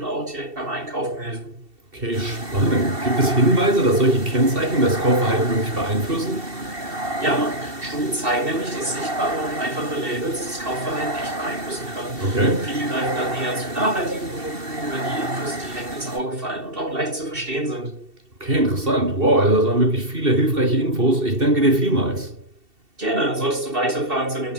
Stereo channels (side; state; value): left; late; 2.7 ms